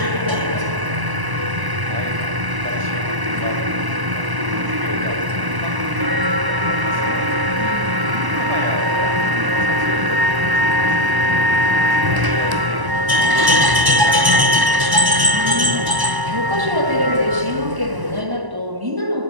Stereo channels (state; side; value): late; left; 1.0 ms